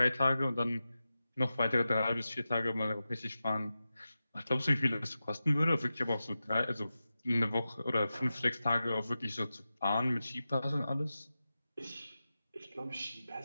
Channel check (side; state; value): both; inverted; correlation -0.93